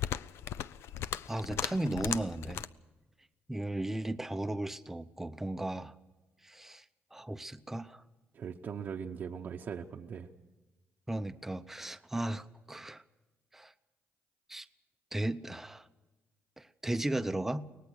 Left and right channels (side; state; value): both; normal; correlation 0.83